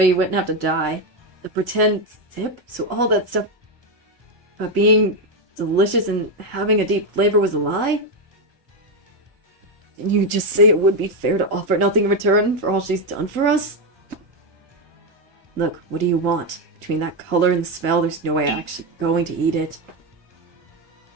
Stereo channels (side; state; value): left; late; 1.5 ms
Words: he wouldn't have to die. The pretend sip? So all that stuff about being delicious and having a deep flavor was a lie? Didn't you just say it would be fair to offer nothing in return for all she's done for us? Look, what do you want? Between that color and the smell, there's no way I'm actually going to eat it.